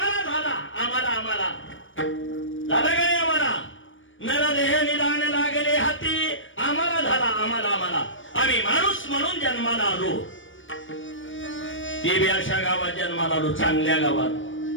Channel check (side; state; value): right; late; 0.56 ms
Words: झाला. आम्हाला आम्हाला झाला का नाही. आम्हाला नरदेह निदान लागले हाती आम्हाला झाला. आम्हाला आम्हाला आम्ही माणूस म्हणून जन्माला आलो. ते बी अशा गावात जन्माला आलो चांगल्या गावात